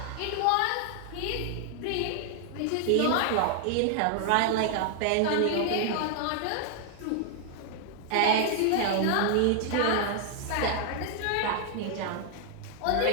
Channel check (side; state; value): both; different; correlation 0.00